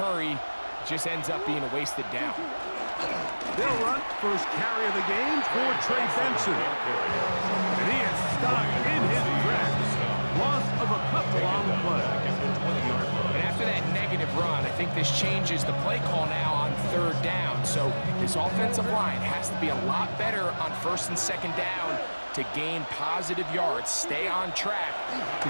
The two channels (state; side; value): inverted; both; correlation -1.00